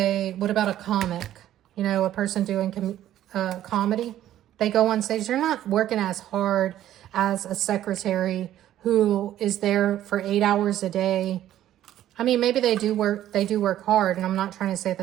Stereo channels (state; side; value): quieter; left; 12.4 dB